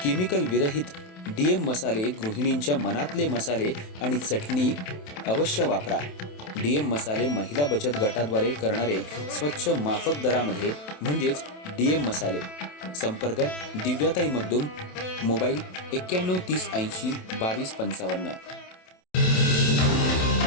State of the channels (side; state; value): right; late; 27 ms